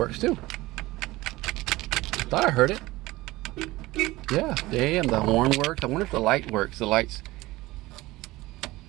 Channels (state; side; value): quieter; left; 19.1 dB